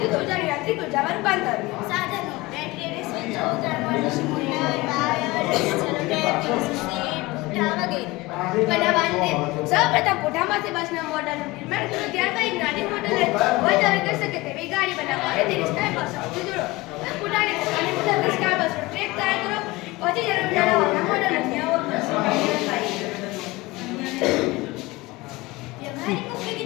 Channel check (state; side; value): quieter; right; 21.2 dB